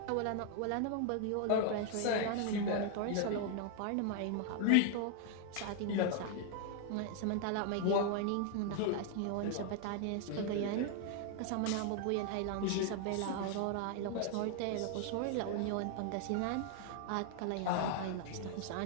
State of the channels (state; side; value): different; both; correlation 0.00